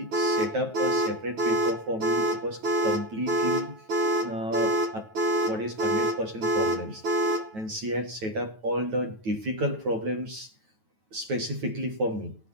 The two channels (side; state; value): left; late; 9.2 ms